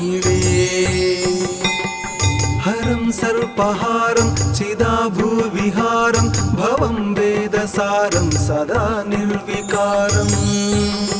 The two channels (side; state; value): both; identical; correlation 1.00